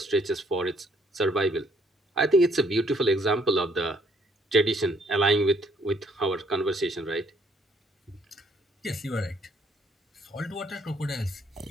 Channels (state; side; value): normal; both; correlation 0.66